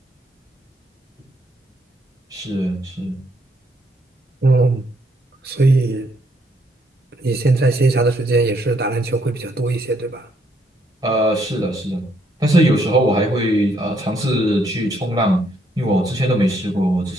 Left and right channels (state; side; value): normal; both; correlation 0.71